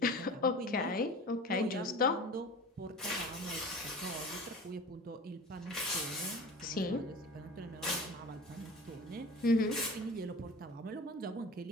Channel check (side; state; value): both; normal; correlation 0.37